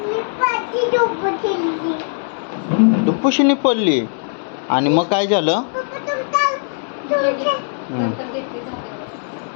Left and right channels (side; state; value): right; silent; digital silence